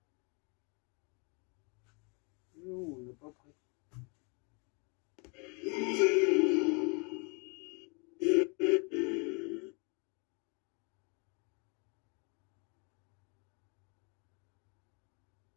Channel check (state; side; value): quieter; right; 33.8 dB